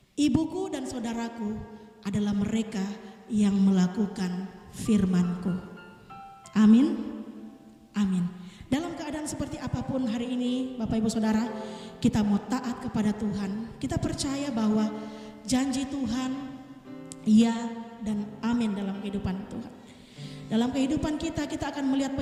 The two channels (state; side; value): identical; both; correlation 1.00